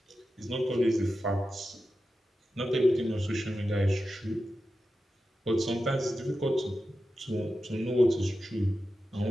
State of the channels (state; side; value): normal; both; correlation 0.91